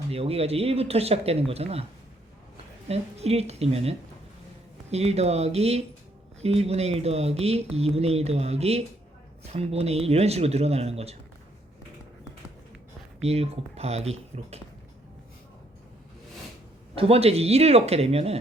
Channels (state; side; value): normal; both; correlation 0.69